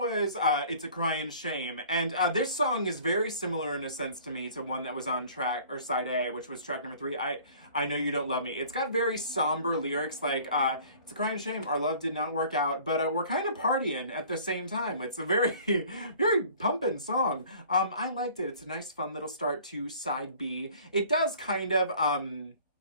It's a Cryin' Shame, and this song is very similar in a sense to me to one that was on track, or side A, which was track number 3, I Know You Don't Love Me. It's got very somber lyrics like, it's a cryin' shame, our love did not work out, but we're kind of partying at the same time. It's a very, very pumping song. I liked it. It's a nice fun little start to side B. It does kind of, how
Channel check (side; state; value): both; inverted; correlation -0.50